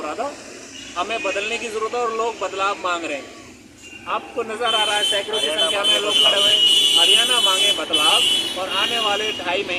रहा था, हमें बदलने की ज़रूरत है और लोग बदलाव मांग रहे हैं। आपको नज़र आ रहा है सैकड़ों की संख्या में लोग खड़े हुए हैं। हरियाणा मांगे बदलाव और आने वाले 2.5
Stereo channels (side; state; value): both; identical; correlation 1.00